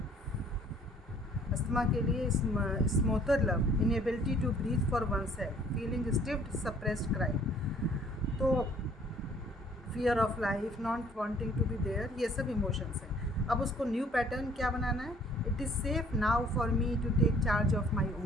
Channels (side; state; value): both; normal; correlation 0.58